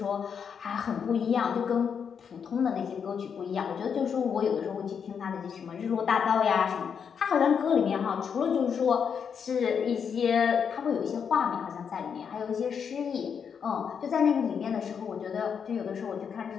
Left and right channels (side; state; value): right; quieter; 7.0 dB